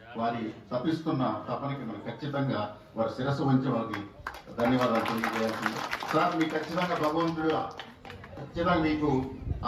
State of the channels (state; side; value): identical; both; correlation 1.00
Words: వారి తప్పిస్తున్న తపనకి మనం ఖచ్చితంగా వారి శిరస్సు వంచి వారికి ధన్యవాదాలు తెలియజేయాల్సింది. సార్, మీకు ఖచ్చితంగా భగవంతుడు ఖచ్చితంగా మీకు